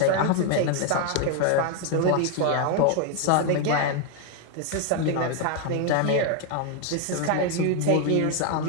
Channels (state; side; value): different; both; correlation 0.01